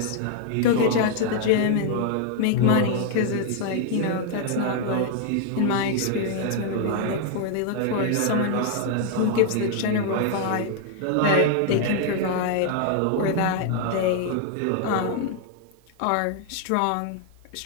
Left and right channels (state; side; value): different; both; correlation 0.00